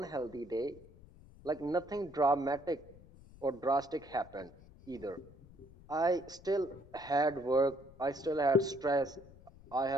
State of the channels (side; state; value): left; noise; rumble, 22 dB below the sound